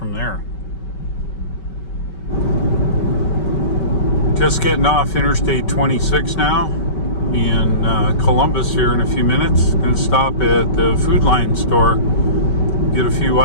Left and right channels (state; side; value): late; right; 5.2 ms